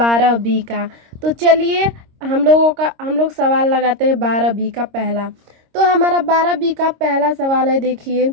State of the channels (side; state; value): left; late; 26 ms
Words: का। तो चलिए हम लोग सवाल लगाते हैं 12B का पहला। तो हमारा 12B का पहला सवाल है, देखिए,